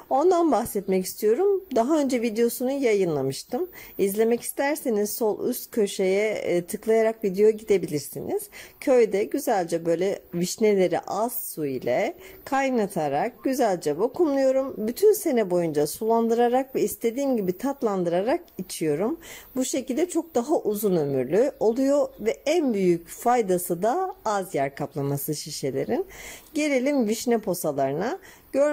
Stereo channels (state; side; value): identical; both; correlation 1.00